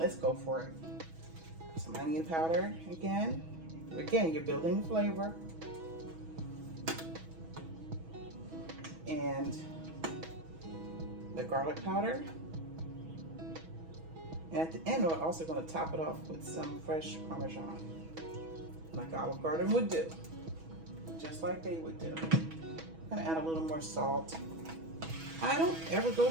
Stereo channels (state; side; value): late; left; 6.2 ms